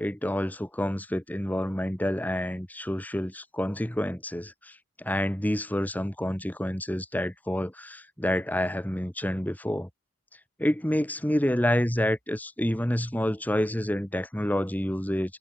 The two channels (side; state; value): both; normal; correlation 0.92